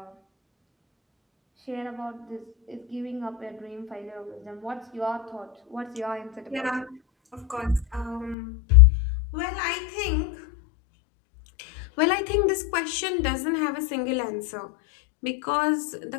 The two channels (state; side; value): drops out; right; at 8.3 s